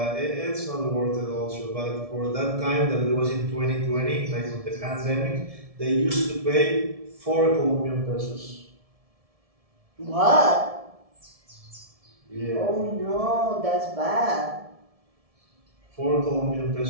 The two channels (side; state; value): left; late; 1.7 ms